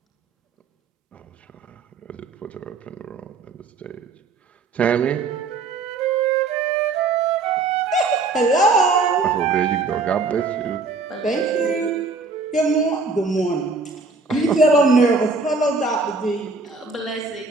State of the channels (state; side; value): quieter; left; 4.0 dB